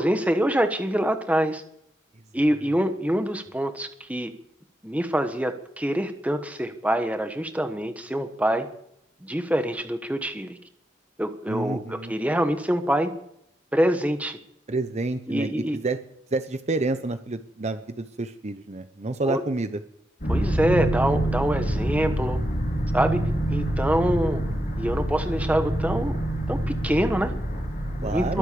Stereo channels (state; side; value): normal; both; correlation 0.85